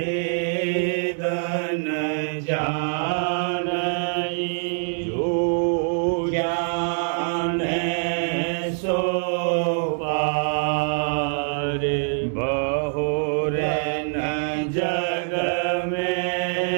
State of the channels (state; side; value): silent; left; 62 dB below the other